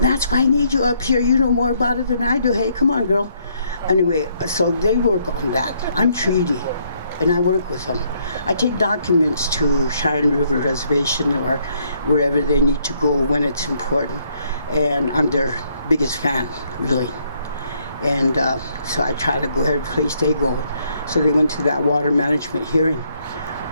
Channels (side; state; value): both; inverted; correlation -0.71